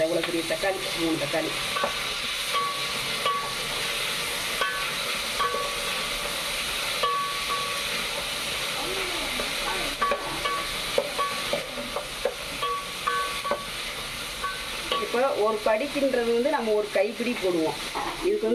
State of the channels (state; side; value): identical; both; correlation 1.00